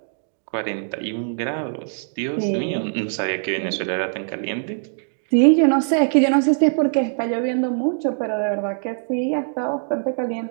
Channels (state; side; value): silent; left; digital silence